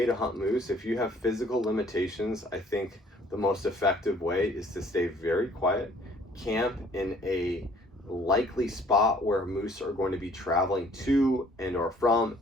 to hunt moose, if you have physical limitations, I think the most effective way is to stay very quiet, camp in a likely spot where moose are going to be traveling to and or from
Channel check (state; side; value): normal; both; correlation 0.58